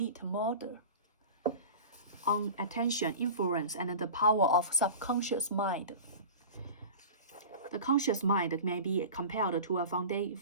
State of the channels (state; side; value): inverted; both; correlation -0.34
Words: murder? On attention, influence, and the power of subconscious mind. The conscious mind may be compared to a